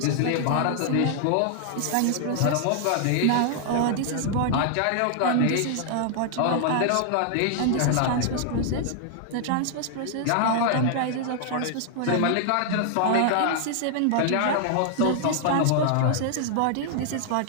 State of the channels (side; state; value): both; different; correlation 0.00